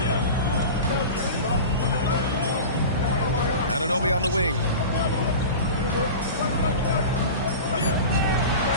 Anunoby on the wing.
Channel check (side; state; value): both; inverted; correlation -0.31